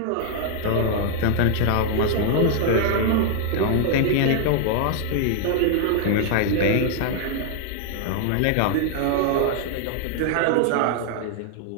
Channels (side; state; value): both; different; correlation 0.00